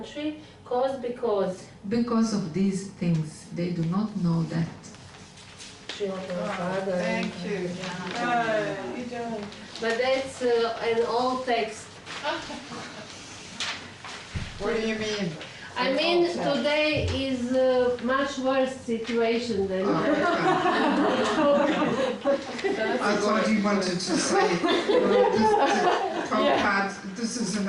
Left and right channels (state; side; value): identical; both; correlation 1.00